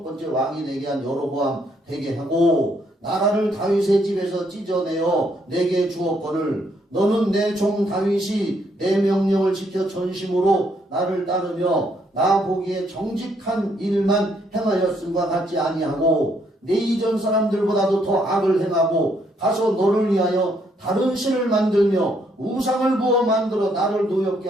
번째 왕이 되게 한 여로보암 되게 하고 나라를 다윗의 집에서 찢어내어 내게 주었거늘 너는 내 종 다윗이 내 명령을 지켜 전심으로 나를 따르며 나 보기에 정직한 일만 행하였음과 같지 아니하고 내 이전 사람들보다도 더 악을 행하고 가서 너를 위하여 다른 신을 만들며 우상을 부어 만들어 나를 노엽게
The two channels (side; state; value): both; normal; correlation 0.71